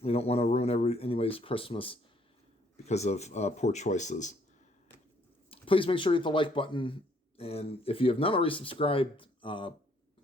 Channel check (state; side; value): normal; both; correlation 0.65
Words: don't want to ruin anybody's Christmas because of poor choices. Please make sure you hit the like button, and if you have not already subscribed,